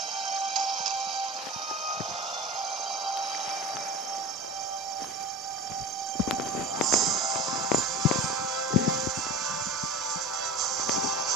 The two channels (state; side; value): normal; both; correlation 0.32